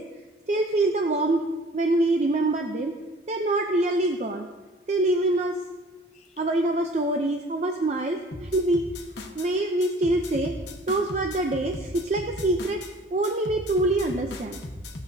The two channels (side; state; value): both; normal; correlation 0.49